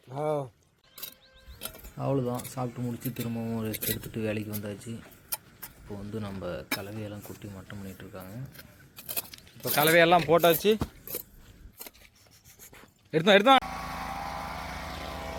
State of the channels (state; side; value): identical; both; correlation 1.00